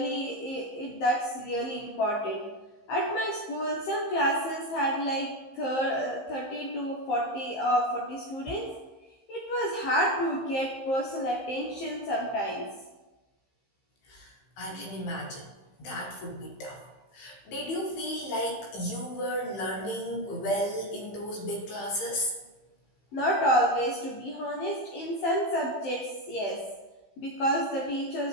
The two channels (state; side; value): late; right; 15 ms